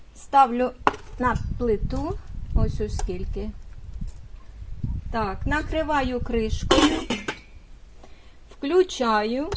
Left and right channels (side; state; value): both; identical; correlation 1.00